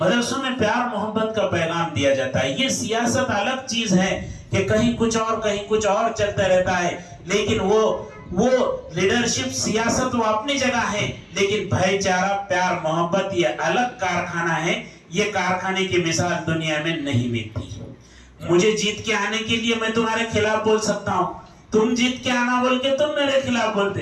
मदरसों में प्यार मोहब्बत का पैगाम दिया जाता है। ये सियासत अलग चीज है कि कहीं कुछ और चलता रहता है, लेकिन वो लीडरशिप सियासत वो अपनी जगह है, लेकिन भाईचारा, प्यार, मोहब्बत ये अलग कारखाना है। ये कारखाने की मिसाल दुनिया में नहीं मिलती। मुझे जीत के आने के लिए मैं तुम्हारे खिलाफ बोल सकता हूँ, तुम जीत के आना बोल के तुम मेरे खिलाफ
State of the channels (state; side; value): identical; both; correlation 1.00